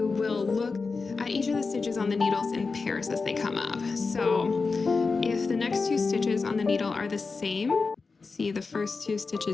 will look at each of the stitches on the needles in pairs as they come up. So, if the next two stitches on the needle are the same, see the first two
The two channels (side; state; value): right; quieter; 4.4 dB